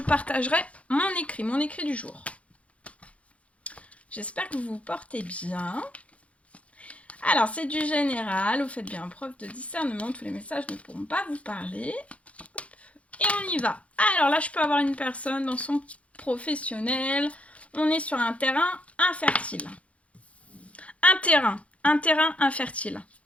mon écrit du jour. J'espère que vous vous portez bien. Alors, c'est du général, vous faites bien preuve de discernement, tous les messages ne pourront pas vous parler. Et on y va. Alors là, je peux avoir une personne dans son professionnel. On est sur un terrain infertile. Un terrain infertile.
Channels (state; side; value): late; right; 0.064 ms